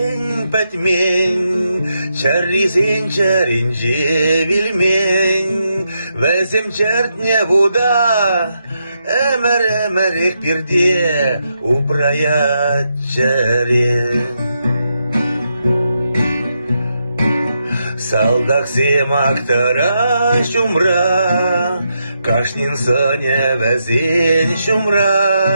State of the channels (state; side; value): inverted; both; correlation -0.82